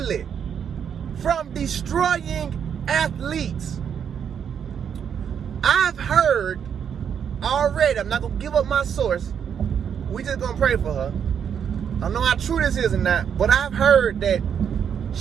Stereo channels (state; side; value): quieter; left; 7.9 dB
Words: from destroying athletes. I've heard already, I'm not going to give up my source. We just going to pray for her. I don't know how true this is or not, but I've heard that